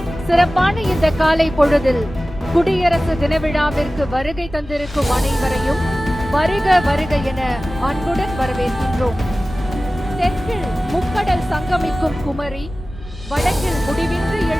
சிறப்பான இந்த காலை பொழுதில் குடியரசு தின விழாவிற்கு வருகை தந்திருக்கும் அனைவரையும் வருக வருக என அன்புடன் வரவேற்கின்றோம். தெற்கில் முக்கடல் சங்கமிக்கும் குமரி, வடக்கில் முடிவின்றி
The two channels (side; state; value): both; normal; correlation 0.96